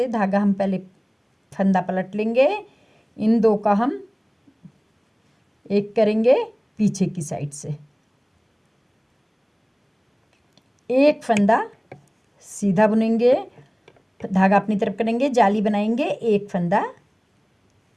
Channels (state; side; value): identical; both; correlation 1.00